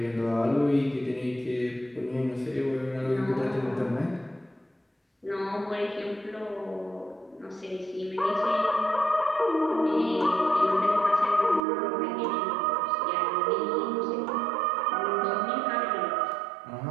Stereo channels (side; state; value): left; drops out; at 11.7 s